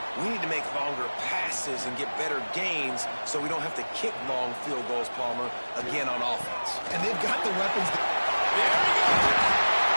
We need to make longer passes and get better gains so we don't have to kick long field goals, Palmer, again on offense. And they've got the weapons. There we go.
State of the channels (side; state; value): both; inverted; correlation -1.00